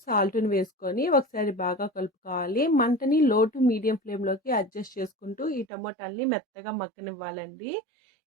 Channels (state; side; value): drops out; left; at 5.7 s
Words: సాల్ట్‌ని వేసుకొని ఒకసారి బాగా కలుపుకోవాలి. మంటని లో టు మీడియం ఫ్లేమ్‌లోకి అడ్జస్ట్ చేసుకుంటూ ఈ టమోటాలని మెత్తగా మగ్గనివ్వాలండి.